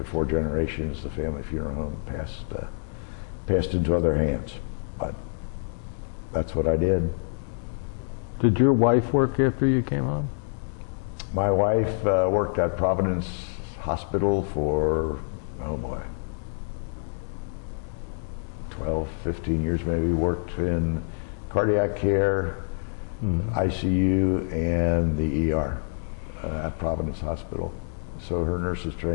4 generations, the family funeral home passed into other hands. But that's what I did. Did your wife work after you came home? My wife worked at Providence Hospital for, oh boy, 12, 15 years maybe. Worked in cardiac care, ICU, and the ER at Providence Hospital. So her nurse's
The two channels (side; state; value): right; silent; digital silence